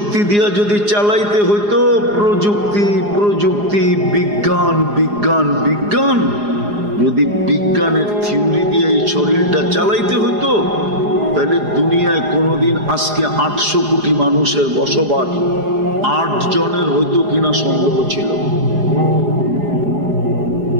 দিয়া যদি চালাইতে হইতো, প্রযুক্তি প্রযুক্তি বিজ্ঞান বিজ্ঞান বিজ্ঞান, যদি বিজ্ঞানের থিওরি দিয়ে এই শরীরটা চালাইতে হইতো, তাহলে দুনিয়ায় কোনোদিন আজকে 800 কোটি মানুষের বসবাস 8 জনের হইতো কিনা সন্দেহ ছিল।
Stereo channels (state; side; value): late; left; 4.8 ms